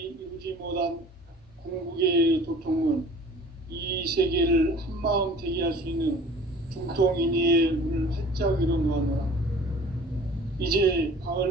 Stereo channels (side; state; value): both; normal; correlation 0.47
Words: 이루지 못한 궁극의 도통문, 이 세계를 한마음 되게 할 수 있는 중통인의의 문을 활짝 열어놓았노라. 이제